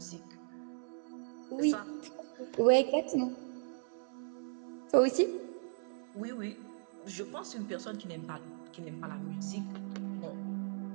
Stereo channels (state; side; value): silent; left; 53 dB below the other